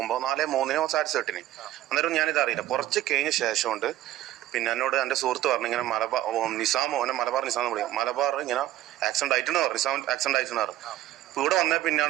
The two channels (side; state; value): left; quieter; 14.2 dB